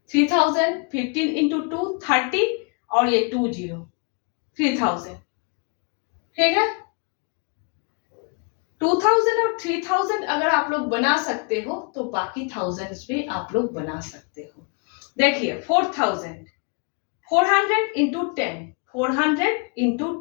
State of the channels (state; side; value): quieter; right; 36.0 dB